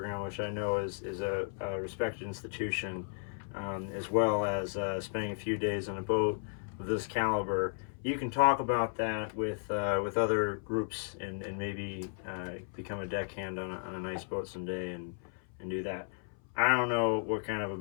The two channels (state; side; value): silent; right; 55 dB below the other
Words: which I know is a respected institution, as well as spending a few days on a boat of this caliber. You can talk about that with other groups and maybe become a deckhand on a nice boat someday and do that. I don't know what kind of a